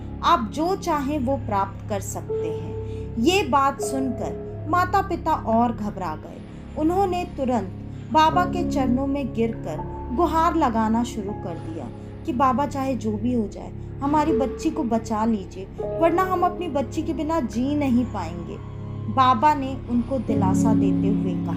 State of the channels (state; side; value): identical; both; correlation 1.00